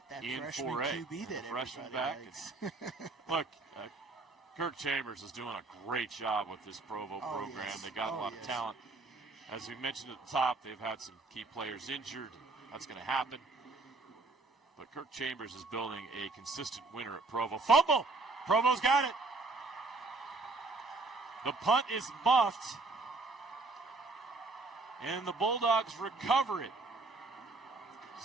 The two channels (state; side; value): quieter; left; 3.5 dB